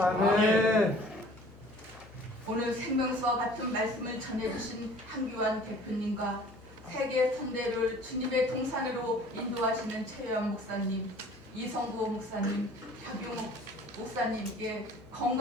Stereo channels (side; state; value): both; normal; correlation 0.50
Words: 오늘 생명수와 같은 말씀을 전해주신 한규환 대표님과 세계 선대를 주님의 동산으로 인도하시는 최유한 목사님, 이성구 목사님, 박용 목사님께